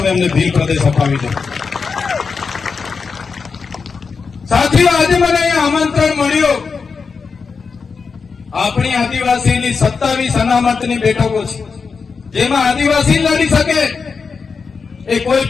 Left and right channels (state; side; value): quieter; right; 5.2 dB